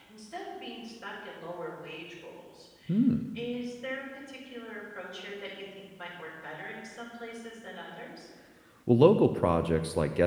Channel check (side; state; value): both; identical; correlation 1.00